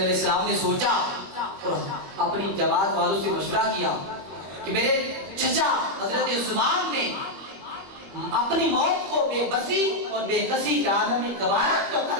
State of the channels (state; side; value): late; left; 21 ms